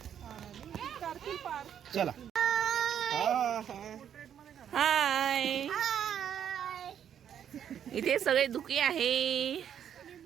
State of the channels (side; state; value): left; quieter; 9.2 dB